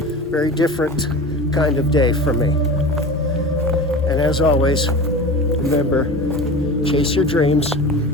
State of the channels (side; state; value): both; normal; correlation 0.32